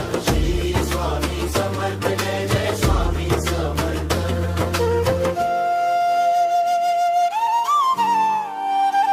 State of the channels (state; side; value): identical; both; correlation 1.00